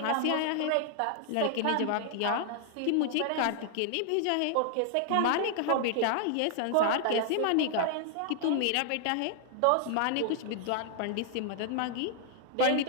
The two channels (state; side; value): different; both; correlation 0.00